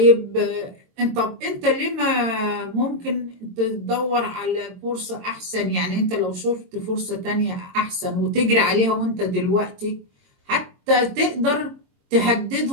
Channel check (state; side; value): late; left; 22 ms